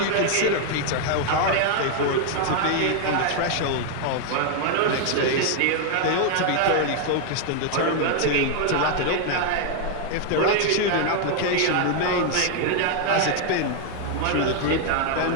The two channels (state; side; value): different; both; correlation 0.00